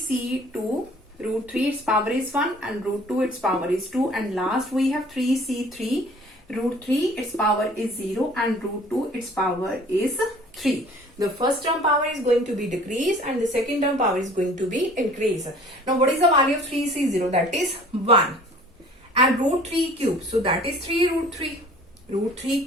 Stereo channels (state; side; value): normal; both; correlation 0.50